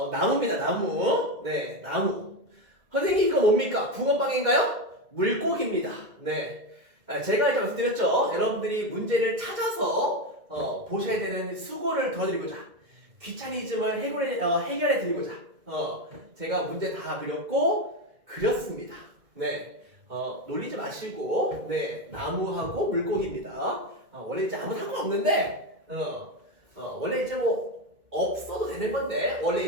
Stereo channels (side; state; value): left; late; 2.1 ms